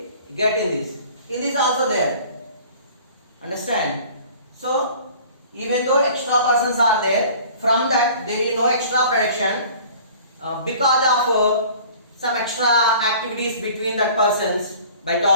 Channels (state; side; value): inverted; both; correlation -0.47